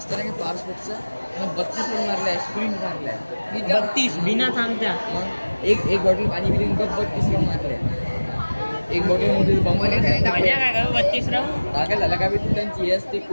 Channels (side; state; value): both; inverted; correlation -1.00